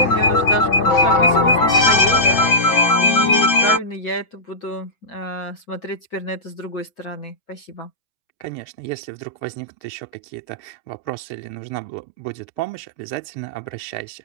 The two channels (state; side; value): late; right; 6.6 ms